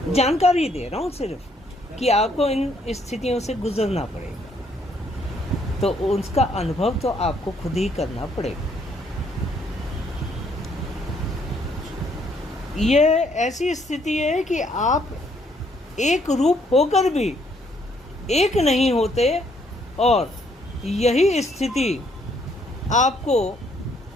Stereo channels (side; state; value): both; normal; correlation 0.68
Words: जानकारी दे रहा हूँ सिर्फ कि आपको इन स्थितियों से गुजरना पड़ेगा, तो उसका अनुभव तो आपको खुद ही करना पड़ेगा। ये ऐसी स्थिति है कि आप एक रूप होकर भी एक नहीं होते, और यही स्थिति आपको